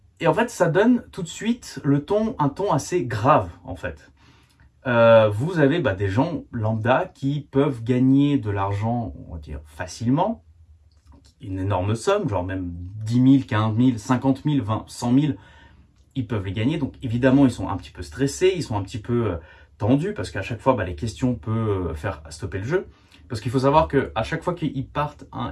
et en fait, ça donne tout de suite un ton assez grave, en fait. Vous avez des gens lambda qui peuvent gagner de l'argent, on va dire, facilement, une énorme somme, genre même 10 000, 15 000, 50 000, 20, 100 000, ils peuvent les gagner. Donc évidemment, ils sont un petit peu stressés, ils sont un petit peu tendus, parce qu'à chaque fois, les questions peuvent faire stopper le jeu. Parce qu'il faut savoir qu'à chaque fois qu'ils partent,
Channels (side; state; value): both; identical; correlation 1.00